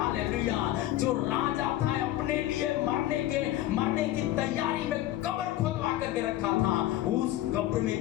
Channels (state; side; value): quieter; right; 14.3 dB